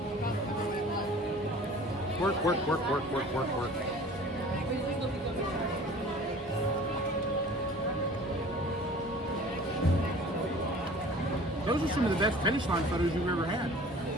Work, work, work, work, work, work, work. Those are some of the best finish line photos you've ever had.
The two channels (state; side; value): normal; both; correlation 0.45